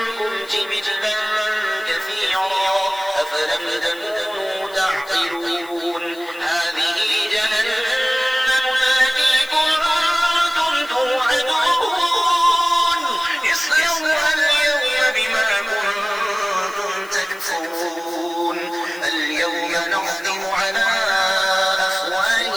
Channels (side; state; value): left; noise; hiss, 22 dB below the sound